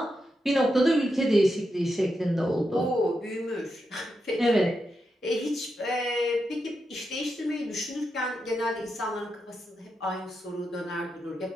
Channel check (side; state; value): both; normal; correlation 0.86